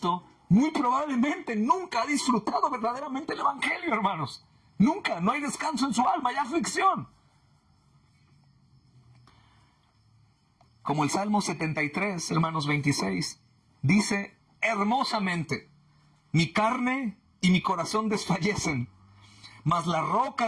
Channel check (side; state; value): both; identical; correlation 1.00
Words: muy probablemente nunca ha disfrutado verdaderamente el evangelio, hermanos. Nunca, no hay descanso en su alma, hay aflicción. Como el Salmo 73, hermanos, 26, dice hermosamente, mi carne y mi corazón desfallecen, mas la